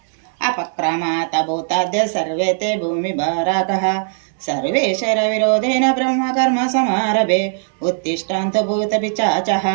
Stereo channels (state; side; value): silent; left; digital silence